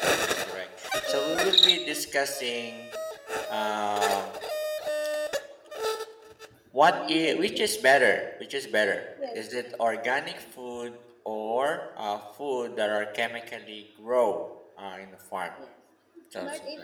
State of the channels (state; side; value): identical; both; correlation 1.00